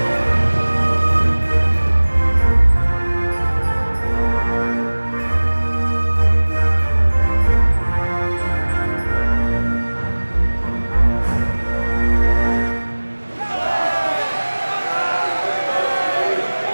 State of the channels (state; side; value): inverted; both; correlation -1.00